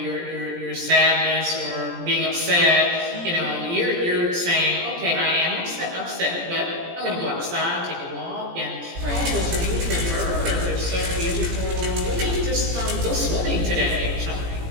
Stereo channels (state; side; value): late; left; 17 ms